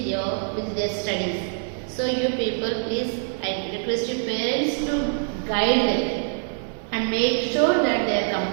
with their studies. So you people, please, I request your parents to guide them and make sure that they are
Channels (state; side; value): silent; left; 62 dB below the other